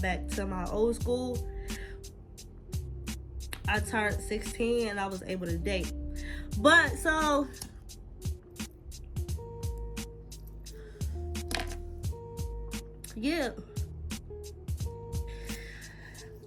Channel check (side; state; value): both; identical; correlation 1.00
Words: back to my old school, I turned 16 and I was able to date. But so yeah,